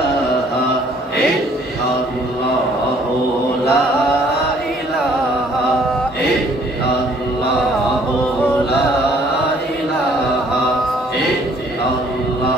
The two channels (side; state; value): both; normal; correlation 0.60